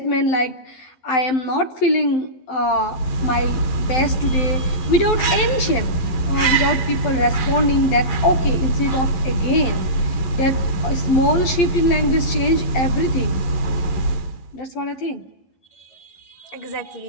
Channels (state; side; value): late; right; 12 ms